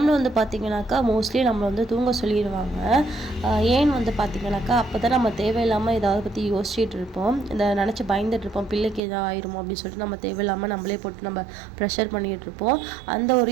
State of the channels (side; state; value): left; drops out; at 9.0 s